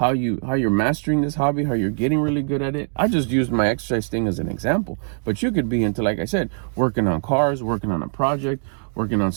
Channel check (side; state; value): left; silent; digital silence